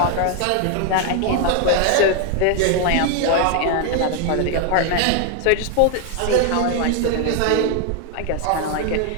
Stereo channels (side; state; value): both; different; correlation 0.00